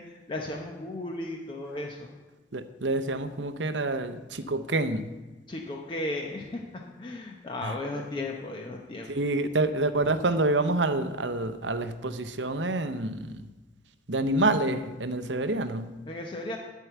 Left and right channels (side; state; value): both; normal; correlation 0.11